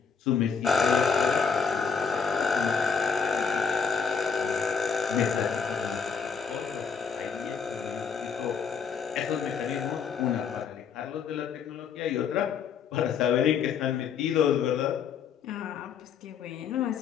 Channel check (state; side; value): quieter; right; 6.2 dB